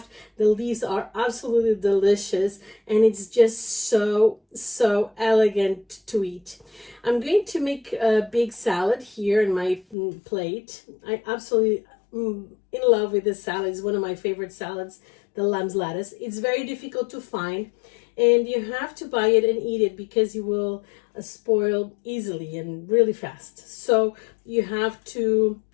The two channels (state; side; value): drops out; right; at 10.0 s